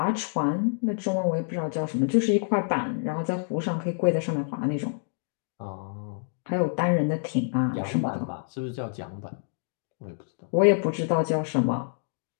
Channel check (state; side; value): silent; right; digital silence